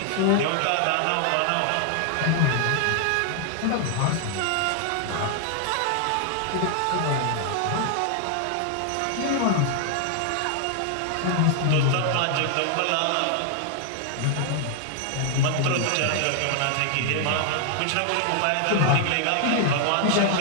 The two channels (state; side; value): different; both; correlation 0.00